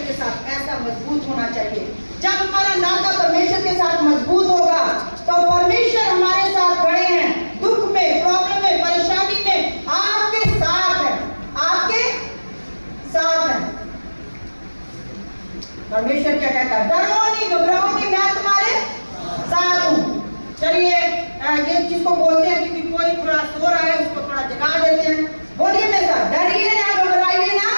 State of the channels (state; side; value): inverted; both; correlation -1.00